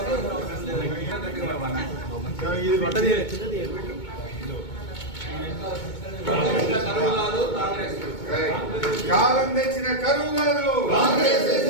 కాలం తెచ్చిన కరువు కాదు,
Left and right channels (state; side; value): late; right; 2.2 ms